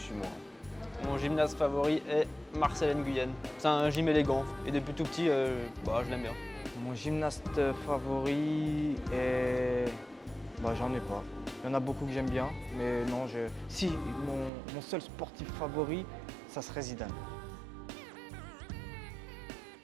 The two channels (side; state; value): left; drops out; at 14.5 s